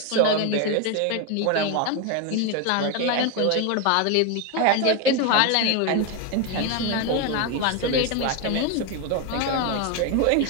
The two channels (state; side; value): different; both; correlation 0.02